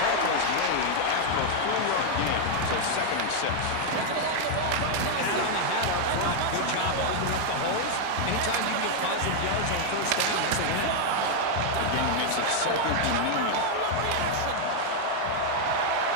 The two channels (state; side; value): different; both; correlation 0.00